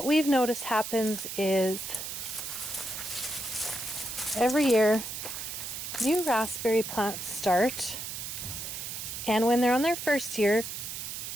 we've noticed happens is every year new raspberry plants start, and when they're on their first year,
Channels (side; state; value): right; noise; hiss, 6 dB below the sound